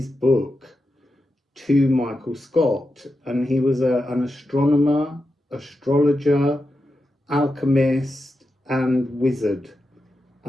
book to Michael Scott, and he was an astronomer, astrologer, alchemist, and wizard.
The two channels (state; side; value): normal; both; correlation 0.89